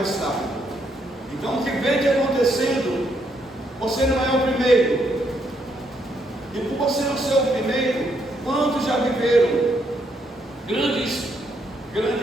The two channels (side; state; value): both; normal; correlation 0.75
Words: rápido. Então, o que vem te acontecendo, você não é o primeiro. E por você não ser o primeiro, quantos já viveram grandes